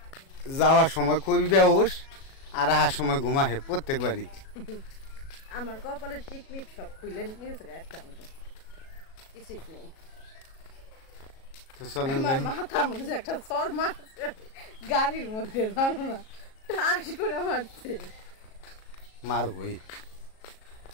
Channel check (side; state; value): right; late; 37 ms